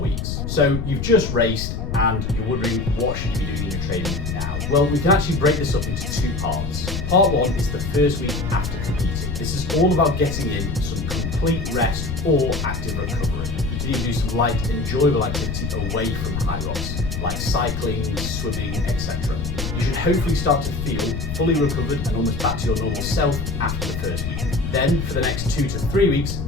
So you've just raced and you're wondering what should you be doing in your training now? Well, we can actually break this up into 2 parts. Part 1 is the first week after competing. This is all about getting in some complete rest or active recovery. You can even do some light, enjoyable activity away from HYROX, like cycling, swimming, etc. You should hopefully start to feel fully recovered and almost back to your normal self after the first week. Then, for the next 2 to 3 weeks,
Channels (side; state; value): left; noise; rumble, 4 dB below the sound